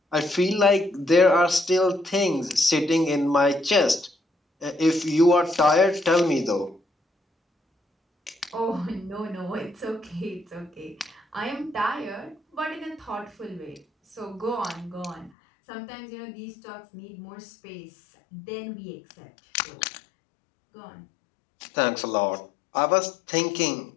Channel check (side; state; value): right; drops out; at 15.3 s